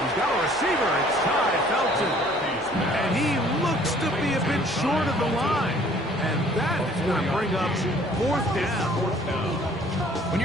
He's got a receiver. It's Ty Felton. And he looks to be a bit and short of the line. And that is going to bring up fourth down. When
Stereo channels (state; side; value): normal; both; correlation 0.56